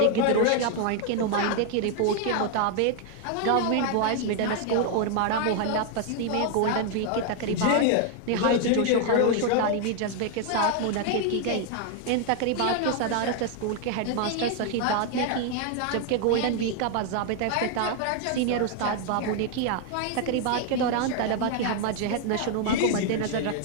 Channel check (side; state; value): both; different; correlation 0.00